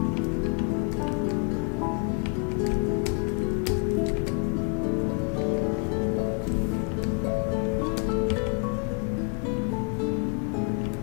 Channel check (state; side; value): quieter; right; 36.9 dB